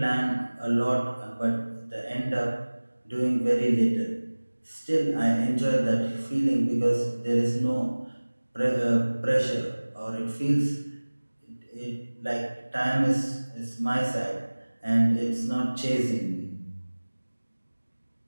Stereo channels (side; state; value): both; inverted; correlation -1.00